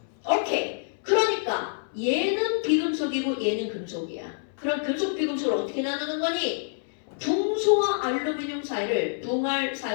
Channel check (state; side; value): silent; right; 60 dB below the other